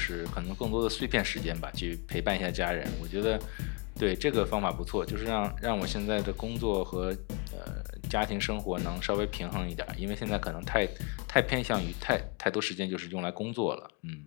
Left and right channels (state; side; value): quieter; right; 29.7 dB